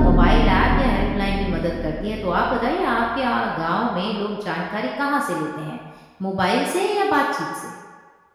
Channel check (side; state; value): both; identical; correlation 1.00